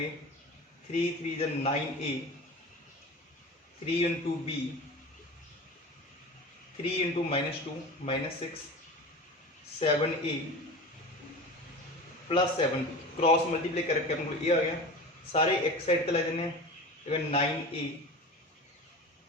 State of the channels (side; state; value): both; normal; correlation 0.32